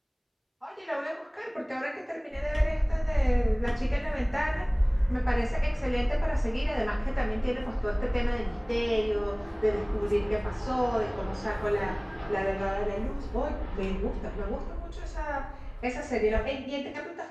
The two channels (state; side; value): identical; both; correlation 1.00